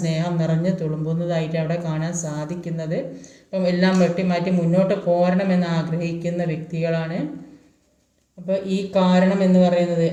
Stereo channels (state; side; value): identical; both; correlation 1.00